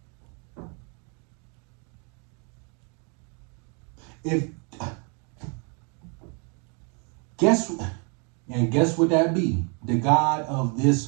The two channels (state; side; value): quieter; left; 35.8 dB